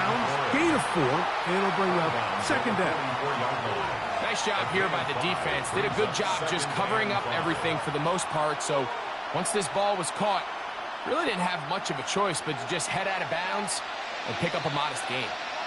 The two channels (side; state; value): both; identical; correlation 1.00